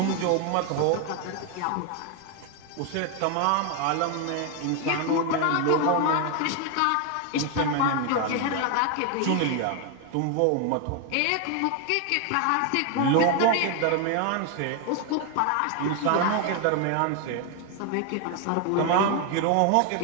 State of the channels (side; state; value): both; different; correlation 0.01